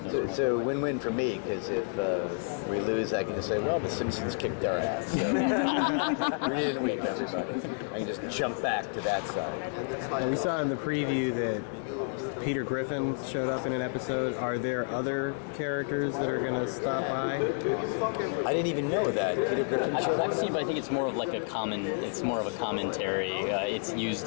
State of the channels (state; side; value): silent; right; 58 dB below the other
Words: It's a win-win for me, because if we lose, I can just say, well, the Simpsons kicked their ass. So we didn't win, everybody. I can just jump back to that side. And we saw in the preview that Peter Griffin showed up in an episode. Are there other characters that are going to stop by? I didn't even know that. Peter Griffin showed up? I've seen, but I think it's more of it's more of a commentary. It's